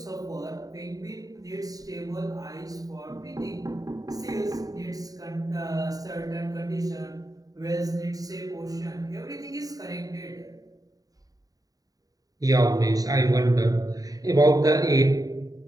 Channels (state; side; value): late; left; 0.18 ms